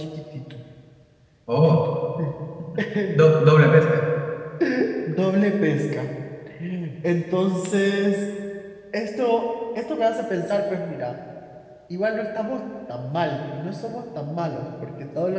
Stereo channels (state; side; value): identical; both; correlation 1.00